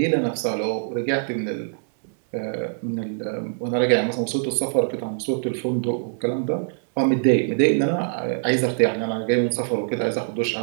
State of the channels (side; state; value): left; silent; 62 dB below the other